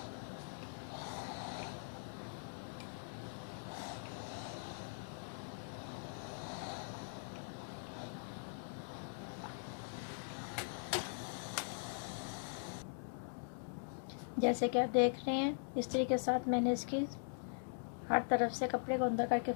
जैसे कि आप देख रहे हैं, इस्त्री के साथ मैंने इसकी हर तरफ से कपड़े को अंदर करके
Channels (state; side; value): silent; right; digital silence